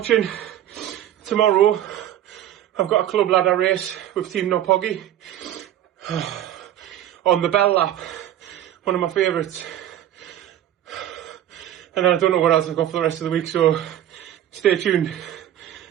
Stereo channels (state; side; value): quieter; left; 11.8 dB